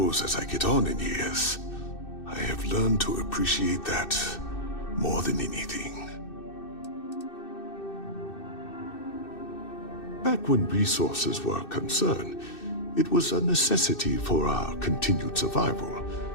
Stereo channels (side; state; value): right; late; 2.6 ms